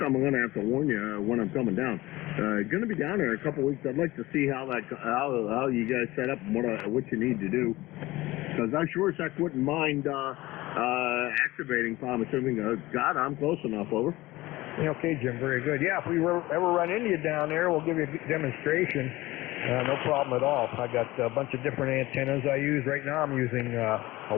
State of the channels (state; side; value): quieter; right; 18.8 dB